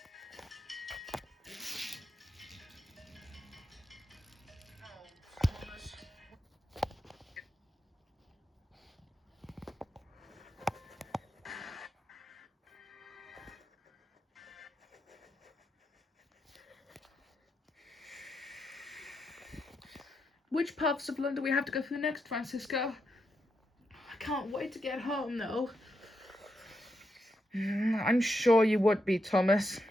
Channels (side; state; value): both; normal; correlation 0.83